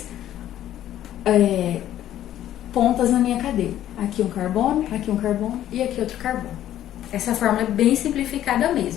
pontas na minha cadeia. Aqui um carbono e aqui outro carbono. Essa fórmula é bem simplificada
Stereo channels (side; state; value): right; quieter; 12.2 dB